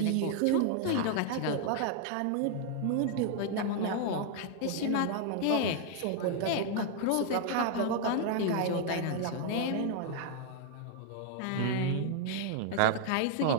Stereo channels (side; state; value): both; different; correlation 0.00